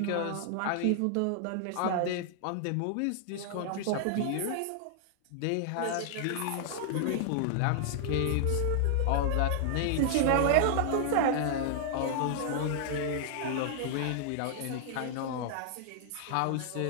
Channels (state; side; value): different; both; correlation -0.01